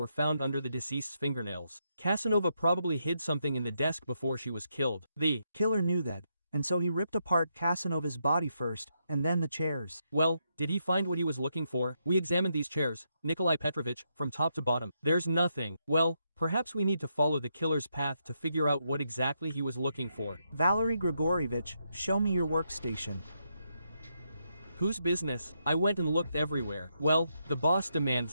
found under the deceased's fingernails. Kasanova probably hid something in the desk before she was killed. The killer knew that, and so he ripped apart Kasanova's body first, and then the chairs. Well, did he find what he was looking for? We examined these chairs, Nikolai Petrovich, from top to bottom. There's nothing. Well, perhaps we need to follow the killer's path to figure out what exactly he was looking for. Valery Grigorievich, show me your workstation. Whose business? I went and looked everywhere. Well, the boss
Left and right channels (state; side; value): inverted; both; correlation -0.80